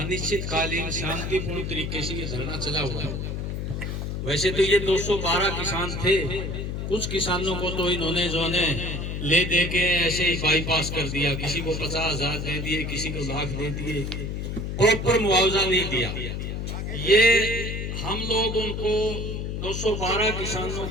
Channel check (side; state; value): left; noise; hum, 4 dB below the sound